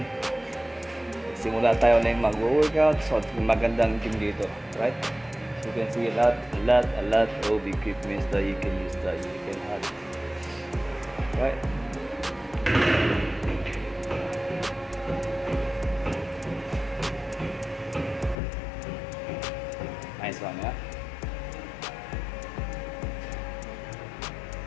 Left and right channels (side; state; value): right; drops out; at 18.4 s